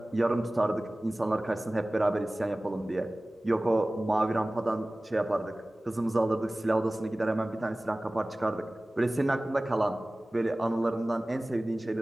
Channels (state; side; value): normal; both; correlation 0.98